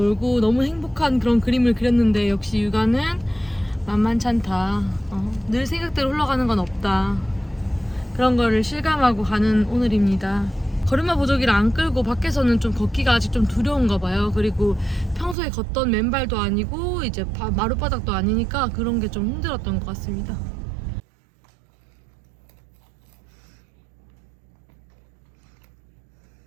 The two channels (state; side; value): drops out; left; at 15.4 s